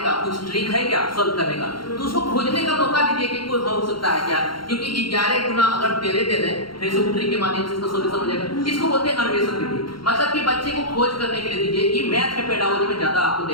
का कुछ ट्रिक है क्या सॉल्व करने का, तो उसको खोजने का मौका दीजिए कि कोई हो सकता है क्या, क्योंकि 11 गुना अगर 13 दे दें फिर से ट्रिक के माध्यम से इसका सॉल्यूशन हो जाएगा। इसको बोलते हैं अन्वेषण विधि, मतलब कि बच्चे को खोज करने के लिए दीजिए। ये मैथ के पेडागोजी में ज्यादा आपको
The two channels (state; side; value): late; right; 0.73 ms